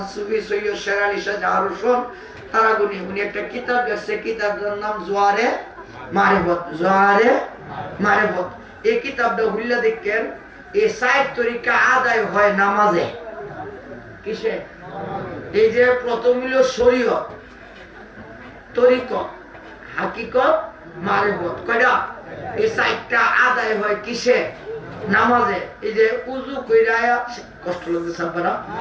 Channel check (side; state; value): both; identical; correlation 1.00